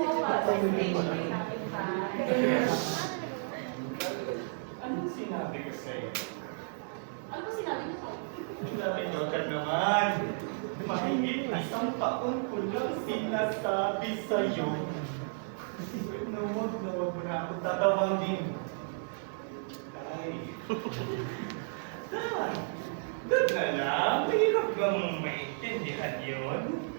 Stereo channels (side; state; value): left; silent; digital silence